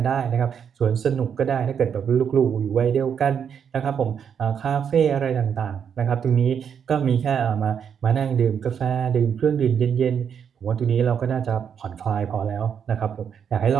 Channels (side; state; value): left; quieter; 7.6 dB